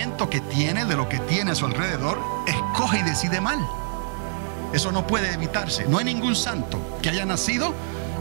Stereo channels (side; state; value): left; silent; digital silence